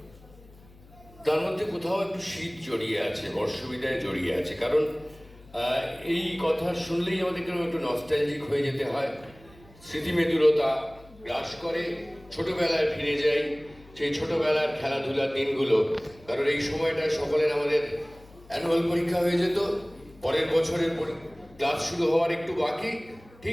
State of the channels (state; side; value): noise; left; hum, 24 dB below the sound